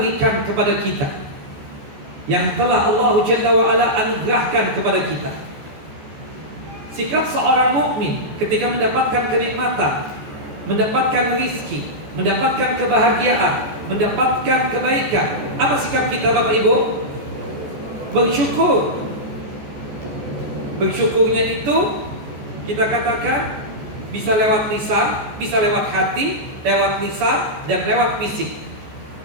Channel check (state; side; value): late; left; 14 ms